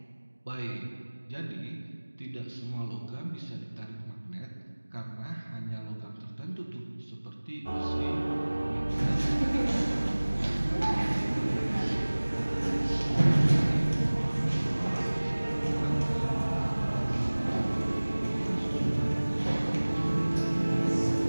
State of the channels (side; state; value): both; inverted; correlation -1.00